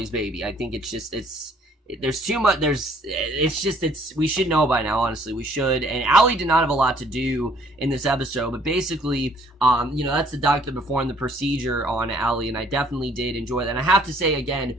baby. I think there's too much, we should know by now, honestly, we should, and Allie did not have a lot to do in this episode, but basically, that's the doctor performed the procedure on Allie, and I definitely did enjoy that, and I have to say, again,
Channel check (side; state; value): both; normal; correlation 0.61